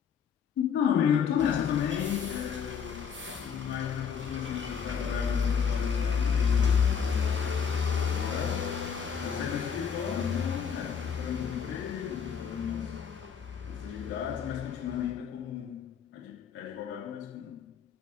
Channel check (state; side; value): quieter; right; 7.1 dB